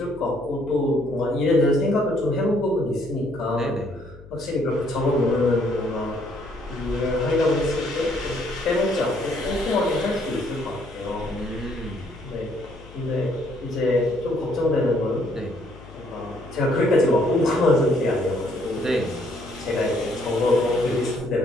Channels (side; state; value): left; noise; hum, 20 dB below the sound